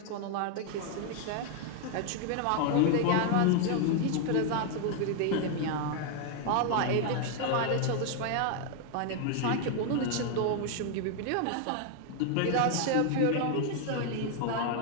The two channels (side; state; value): both; different; correlation 0.00